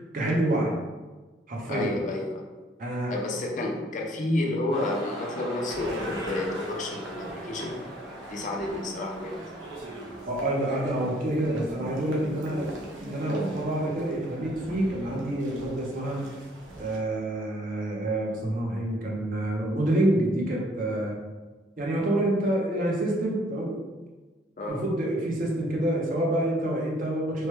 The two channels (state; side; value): normal; both; correlation 0.61